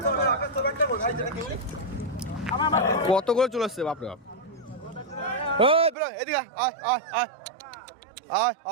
কত করে চলে আসছে বাপরে বাপ এদিকে আয় আয় আয় আয়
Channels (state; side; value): drops out; left; at 6.0 s